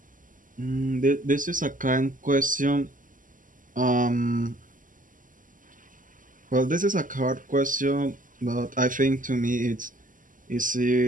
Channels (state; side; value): late; left; 0.38 ms